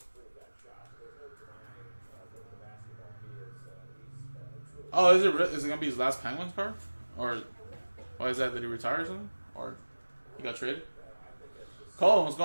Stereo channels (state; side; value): inverted; both; correlation -1.00